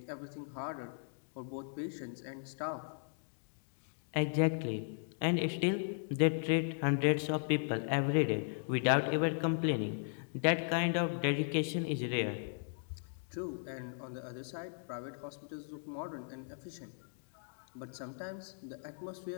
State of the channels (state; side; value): silent; right; digital silence